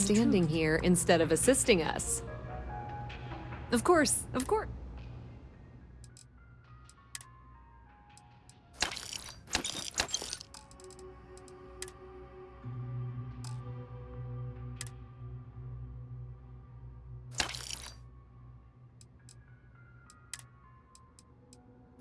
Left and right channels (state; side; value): identical; both; correlation 1.00